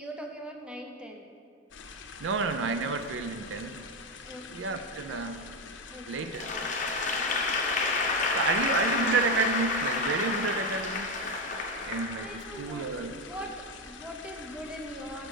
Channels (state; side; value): normal; both; correlation 0.11